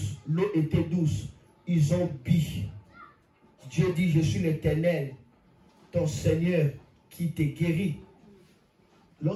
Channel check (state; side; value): identical; both; correlation 1.00